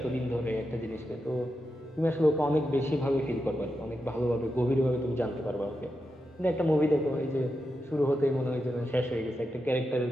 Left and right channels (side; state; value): both; normal; correlation 0.88